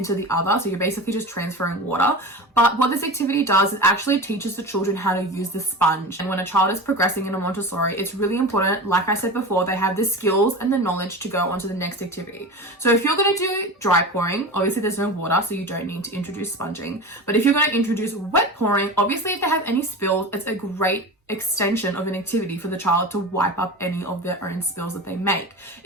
the other. So you're basically just transferring water. But what this activity does is actually teaches the children how to use the sponge. And when a child is progressing in a Montessori, it's really important, like I said before, they have the skills and the knowledge to go on to the next activity. So if you're going to do dry pouring, obviously there's no water, so you don't need to introduce sponging. But if you're going to introduce wet pouring, obviously if they have any spills, it's a great extension of an activity for the child to wipe up any of their own spills that they make.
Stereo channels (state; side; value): normal; both; correlation 0.29